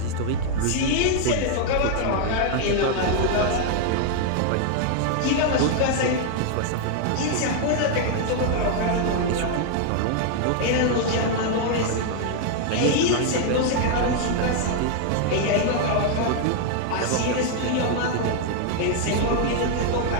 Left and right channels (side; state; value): both; different; correlation 0.00